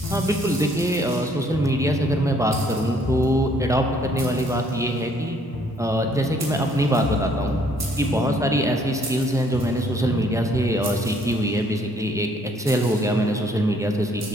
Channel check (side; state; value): both; normal; correlation 0.64